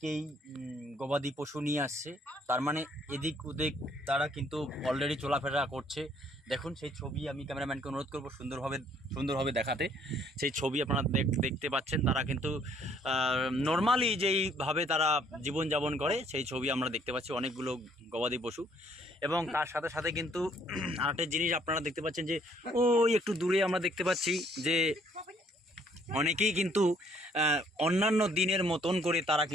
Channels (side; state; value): both; normal; correlation 0.64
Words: গবাদি পশু নিয়ে আসছে, তার মানে এদিক ওদিক তারা কিন্তু অলরেডি চলাফেরা করছে। দেখুন সেই ছবি, আমি ক্যামেরাম্যানকে অনুরোধ করবো সুন্দরভাবে দেখাতে। সেই ছবি আপনারা দেখতে পাচ্ছেন। তারা কিন্তু নর্মালি যেইভাবে তারা জীবনযাপন করে সেই ছবি আমরা দেখতে পাচ্ছি, অনেকগুলো গবাদি পশু। এবং তার সাথে সাথে কিন্তু আরেকটা জিনিস আপনারা দেখতে পাচ্ছেন যে ওই একটু দূরে আমরা দেখতে পাচ্ছি যে অনেকেই কিন্তু অন্যান্য দিনের মতন করে তারা